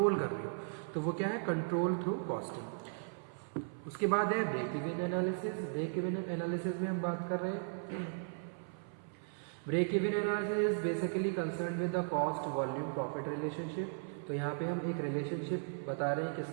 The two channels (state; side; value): silent; left; 53 dB below the other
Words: कर रहे हो। तो वो क्या है, कंट्रोल थ्रू कॉस्टिंग। उसके बाद है break even analysis. Break even analysis में हम बात कर रहे हैं, break even analysis is basically concern with the cost volume profit relationship. तो यहाँ पे हम एक रिलेशनशिप बता रहे हैं